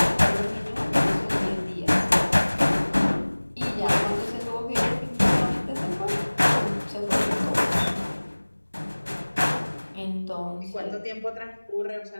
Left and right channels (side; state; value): both; inverted; correlation -1.00